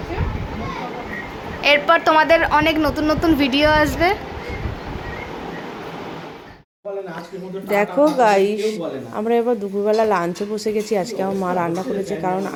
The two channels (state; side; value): identical; both; correlation 1.00